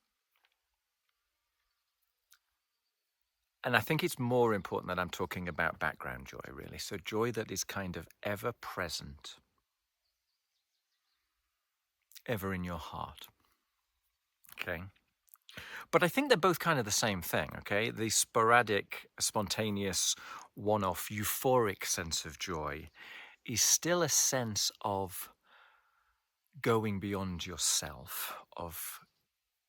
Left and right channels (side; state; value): both; identical; correlation 1.00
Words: And I think it's more important that I'm talking about background joy, really. So joy that is kind of ever present, ever in your heart. Okay? But I think they're both kind of the same thing, okay? The sporadic, spontaneous, one-off, euphoric sense of joy is still a sense of going beyond yourself, of